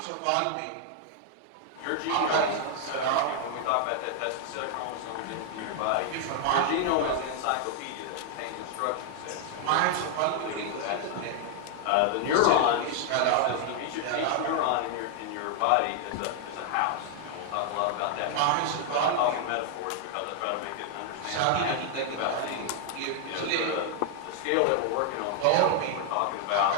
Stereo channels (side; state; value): both; different; correlation 0.00